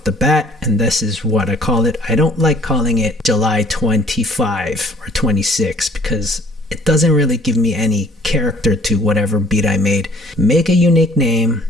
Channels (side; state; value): both; normal; correlation 0.57